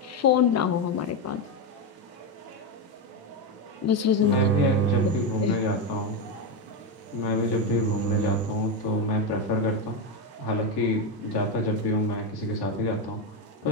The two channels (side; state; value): both; normal; correlation 0.11